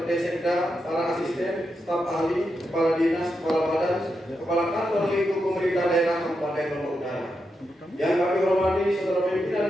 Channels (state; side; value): normal; both; correlation 0.86